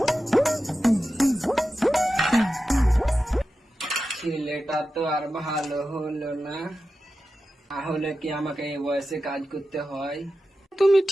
ছেলেটা তো আর ভালো হলো না, তাহলে কি আমাকে এই বয়সে কাজ করতে হয়? তুমি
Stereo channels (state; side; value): normal; both; correlation 0.92